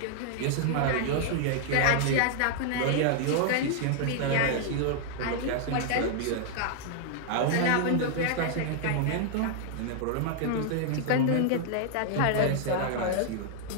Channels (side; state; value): both; different; correlation -0.01